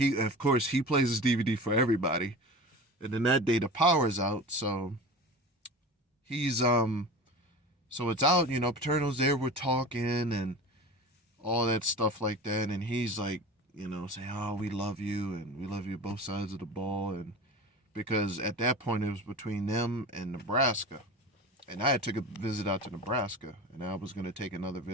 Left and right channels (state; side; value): normal; both; correlation 0.34